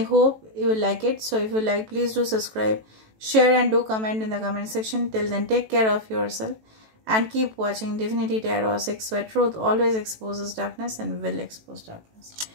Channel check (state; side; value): late; left; 18 ms